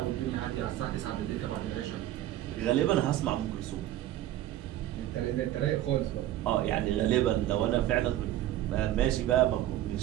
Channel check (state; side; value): quieter; left; 13.4 dB